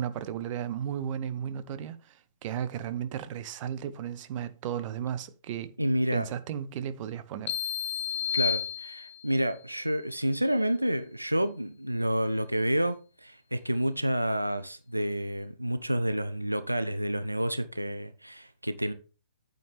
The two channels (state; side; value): inverted; both; correlation -0.83